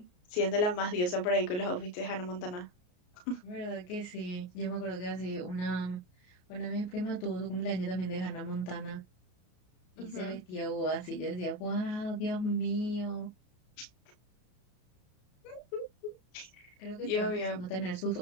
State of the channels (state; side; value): late; right; 33 ms